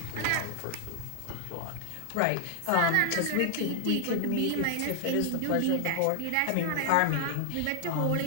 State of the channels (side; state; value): both; different; correlation 0.00